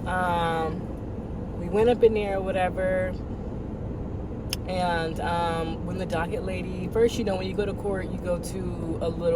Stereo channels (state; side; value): identical; both; correlation 1.00